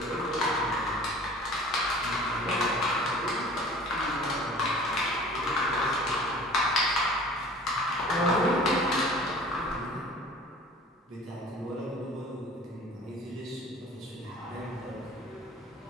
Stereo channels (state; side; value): normal; both; correlation 0.46